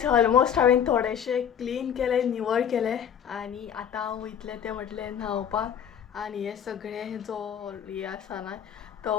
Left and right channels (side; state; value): right; quieter; 8.6 dB